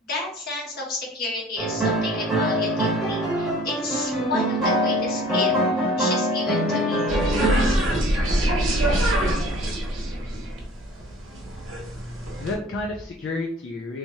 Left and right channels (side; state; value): both; normal; correlation 0.48